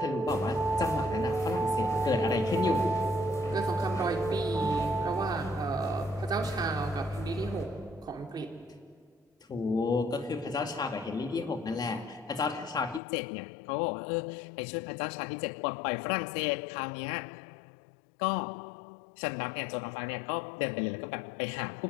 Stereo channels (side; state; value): right; drops out; at 13.0 s